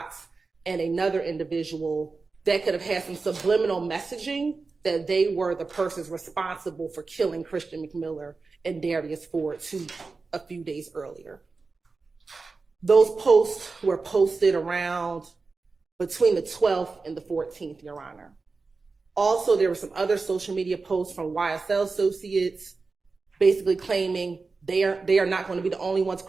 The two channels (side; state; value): left; quieter; 4.2 dB